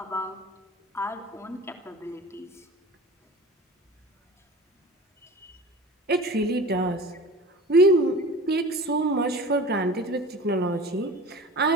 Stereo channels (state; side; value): normal; both; correlation 0.38